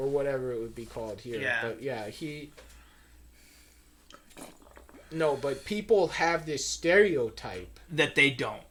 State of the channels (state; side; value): identical; both; correlation 1.00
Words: whatever it would be called here. Yeah. But, yeah, No, but people have this stereotype. That they don't.